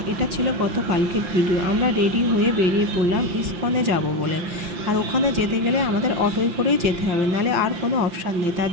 এটা ছিল গতকালকের ভিডিও। আমরা রেডি হয়ে বেরিয়ে পড়লাম ইসকনে যাব বলে। আর ওখানে যেতে গেলে আমাদের অটোয় করেই যেতে হবে, নাহলে আর কোনো অপশান নেই। তার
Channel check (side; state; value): left; late; 5.8 ms